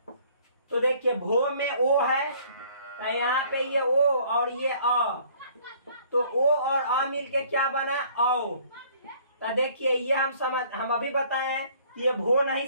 तो देखिए भो में ओ है तो यहाँ पे ये ओ और ये अ, तो ओ और अ मिलके क्या बना औ। तो देखिए ये हम अभी बताए हैं ये भो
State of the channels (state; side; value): inverted; both; correlation -0.57